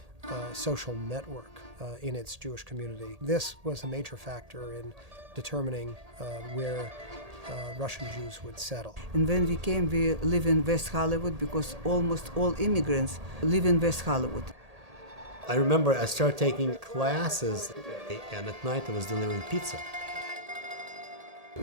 social network. in its Jewish community. This was a major factor in determining where Russian Jews would settle. And when we came, we live in West Hollywood because almost all immigrants live in West Hollywood. I remember I started taking classes, and at night I was delivering pizza.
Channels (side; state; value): left; late; 1.8 ms